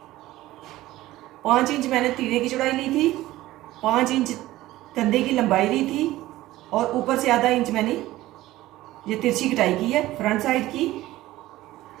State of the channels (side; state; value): left; quieter; 16.4 dB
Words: 5 इंच मैंने तीरे की चौड़ाई ली थी, 5 इंच कंधे की लंबाई ली थी और ऊपर से आधा इंच मैंने ये तिरछी कटाई की है फ्रंट साइड की।